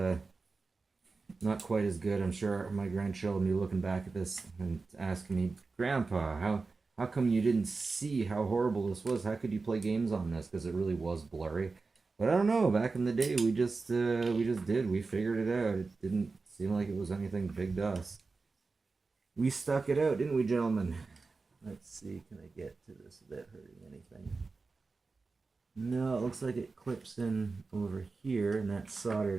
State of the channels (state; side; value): quieter; left; 4.1 dB